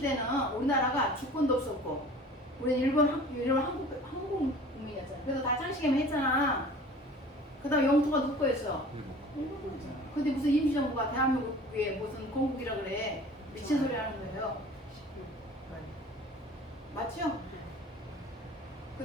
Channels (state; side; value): normal; both; correlation 0.44